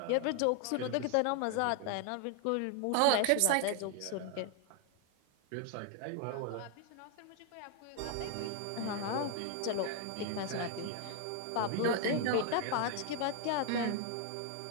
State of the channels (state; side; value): different; both; correlation 0.00